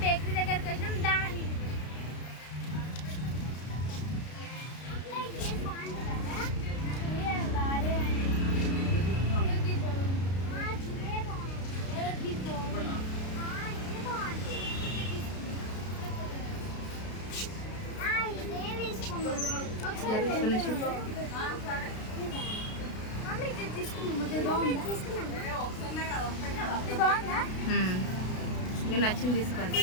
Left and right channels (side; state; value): right; late; 32 ms